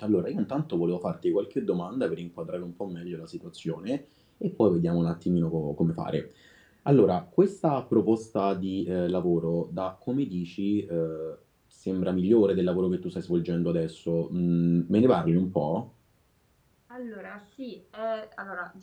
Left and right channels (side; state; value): both; identical; correlation 1.00